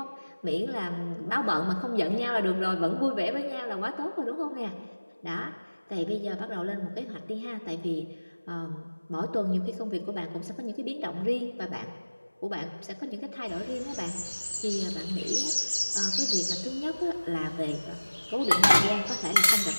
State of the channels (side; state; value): both; inverted; correlation -1.00